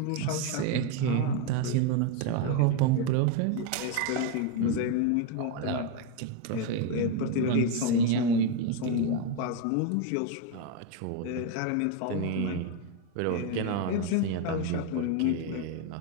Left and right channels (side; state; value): both; different; correlation 0.02